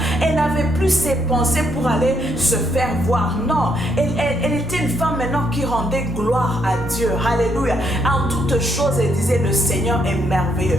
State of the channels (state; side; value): normal; both; correlation 0.74